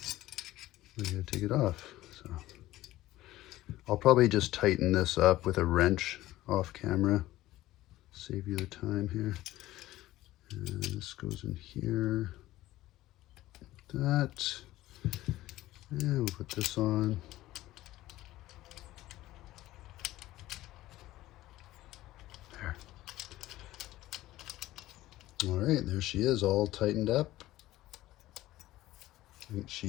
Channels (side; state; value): right; quieter; 16.0 dB